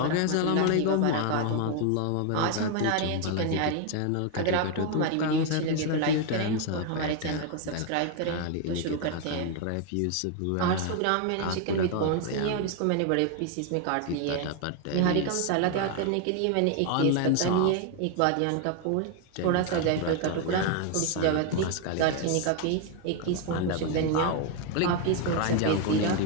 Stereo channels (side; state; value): both; different; correlation 0.01